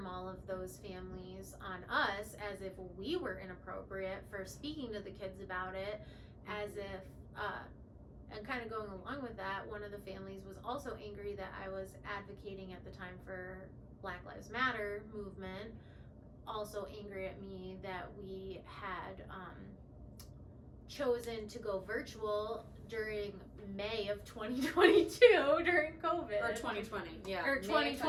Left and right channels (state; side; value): identical; both; correlation 1.00